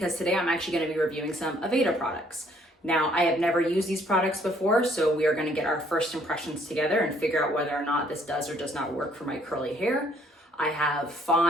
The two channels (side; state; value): both; normal; correlation 0.64